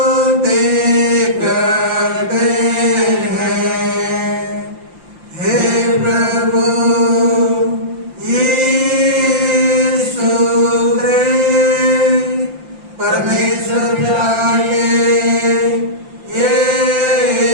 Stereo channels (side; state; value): left; late; 5.8 ms